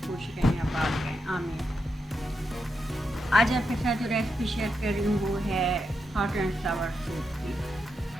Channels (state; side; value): normal; both; correlation 0.84